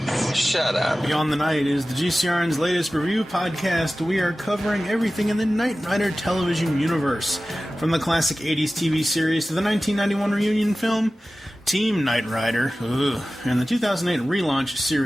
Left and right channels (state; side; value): normal; both; correlation 0.96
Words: Shut up. Beyond the Night is the GCRN's latest review podcast. We are covering everything in the Knight Rider television universe, from the classic 80s TV series to the 1991 reunion film, Team Knight Rider, and the 2008 relaunch